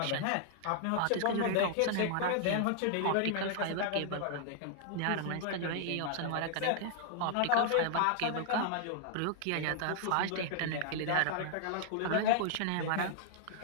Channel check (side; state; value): both; different; correlation -0.01